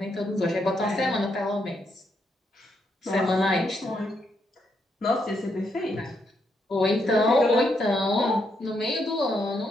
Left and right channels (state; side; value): normal; both; correlation 0.78